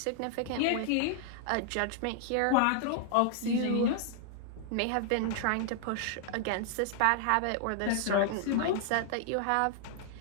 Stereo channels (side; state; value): both; different; correlation -0.01